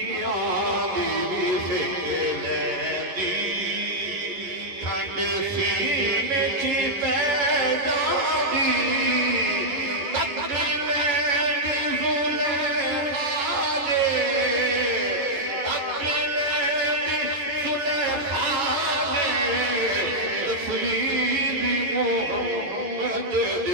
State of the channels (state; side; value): late; left; 11 ms